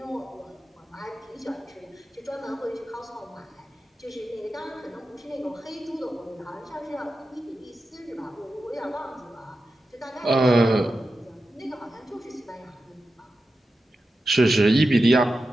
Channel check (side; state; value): both; normal; correlation 0.91